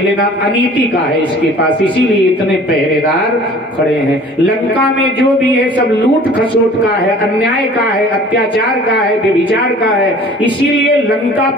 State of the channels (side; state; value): both; normal; correlation 0.48